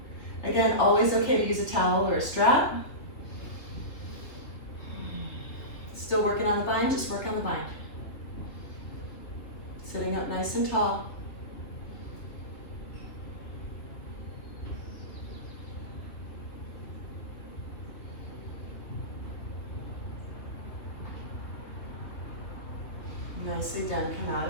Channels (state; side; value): late; right; 3.2 ms